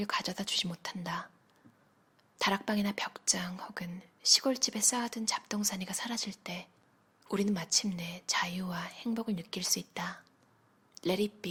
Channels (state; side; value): identical; both; correlation 1.00